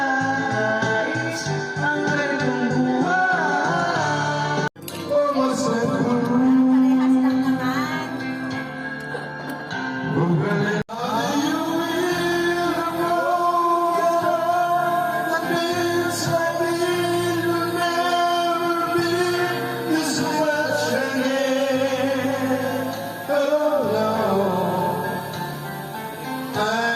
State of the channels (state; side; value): identical; both; correlation 1.00